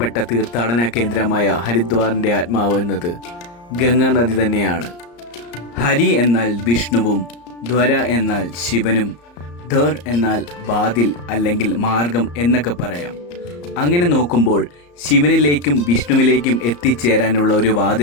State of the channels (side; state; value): right; late; 34 ms